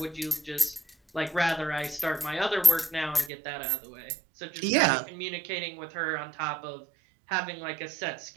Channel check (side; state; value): left; drops out; at 3.3 s